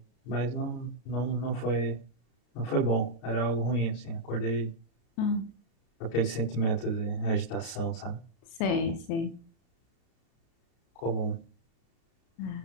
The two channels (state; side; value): late; right; 33 ms